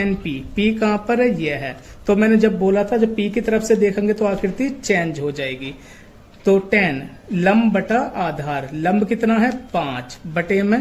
p, p कहां पर है, ये है। तो मैंने जब बोला था जब p की तरफ से देखेंगे तो आकृति चेंज हो जाएगी। तो tan लंब बटा आधार, लंब कितना है 5 बटे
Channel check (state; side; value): identical; both; correlation 1.00